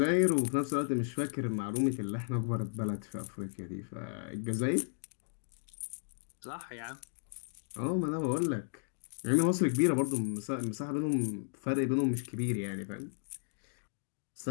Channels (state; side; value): silent; right; digital silence